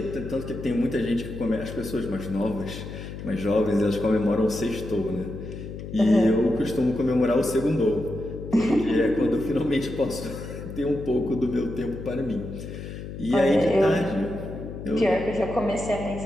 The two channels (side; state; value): left; noise; hum, 9 dB below the sound